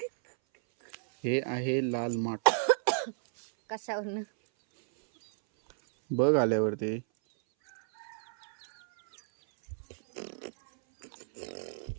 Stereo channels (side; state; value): left; silent; 57 dB below the other